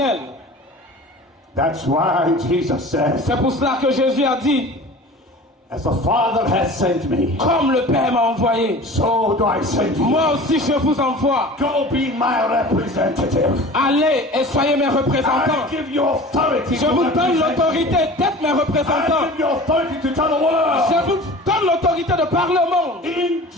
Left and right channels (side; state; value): both; normal; correlation 0.39